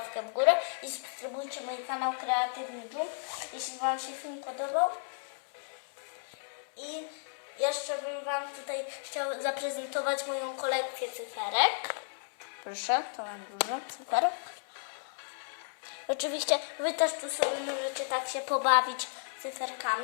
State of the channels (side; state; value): right; silent; 56 dB below the other